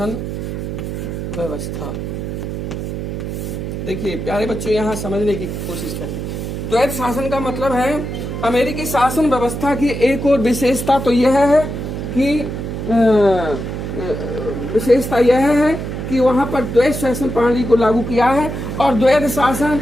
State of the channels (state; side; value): noise; right; hum, 5 dB below the sound